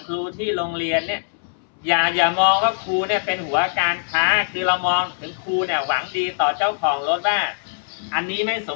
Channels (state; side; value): silent; right; 64 dB below the other